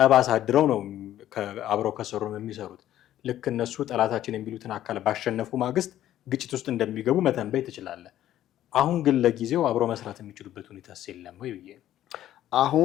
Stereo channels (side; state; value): right; quieter; 12.6 dB